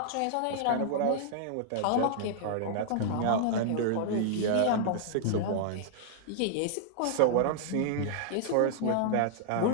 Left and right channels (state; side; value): different; both; correlation -0.01